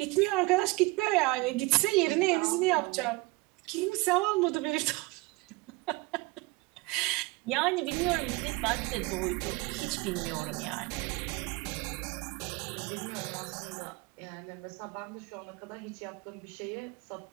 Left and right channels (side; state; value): left; quieter; 23.8 dB